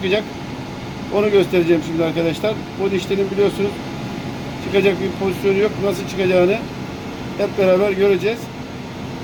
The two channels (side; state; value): both; identical; correlation 1.00